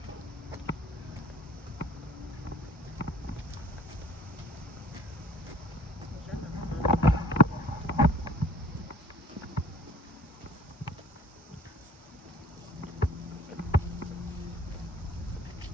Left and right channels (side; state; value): both; normal; correlation 0.53